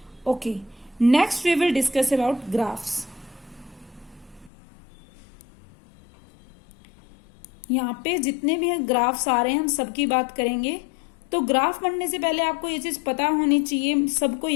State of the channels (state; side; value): drops out; right; at 4.5 s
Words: Okay, next we will discuss about graphs. यहाँ पे जितने भी ग्राफ्स आ रहे हैं हम सबकी बात करेंगे। तो ग्राफ बनने से पहले आपको ये चीज पता होनी चाहिए, सबको